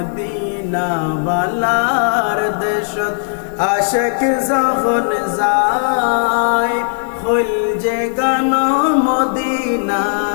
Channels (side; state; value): right; silent; digital silence